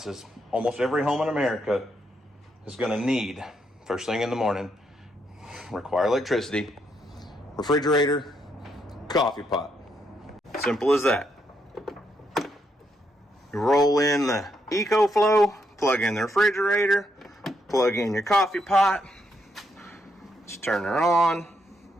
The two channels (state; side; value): normal; both; correlation 0.77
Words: almost every home in America is gonna need, first thing in the morning, require electricity, refrigerator, coffee pot. Simple as that. You roll in the EcoFlow, plug in the refrigerator, plug in your coffee pot, just turn her on,